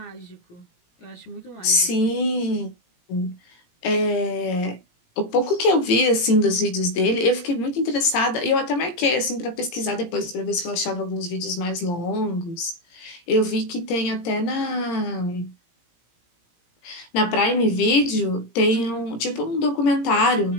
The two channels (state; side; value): late; right; 17 ms